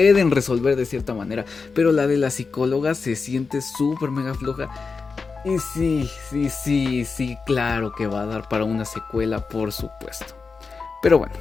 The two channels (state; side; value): quieter; right; 4.7 dB